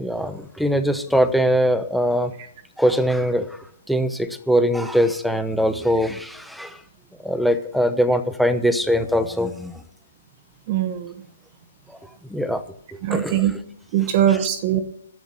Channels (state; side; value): normal; both; correlation 0.60